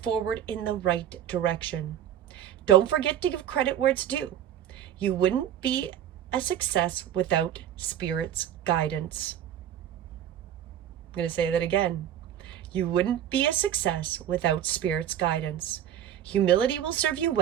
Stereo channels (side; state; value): left; quieter; 10.5 dB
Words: in the right direction. Don't forget to give credit where it's due. You wouldn't be a success without Spirit's guidance. I'm going to say that again. You wouldn't be a success without Spirit's guidance. Humility will serve you